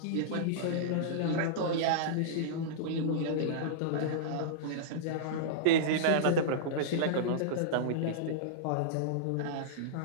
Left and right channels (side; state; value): both; different; correlation -0.03